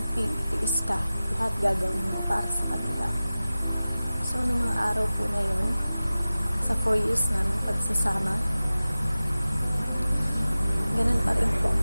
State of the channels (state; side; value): inverted; both; correlation -0.97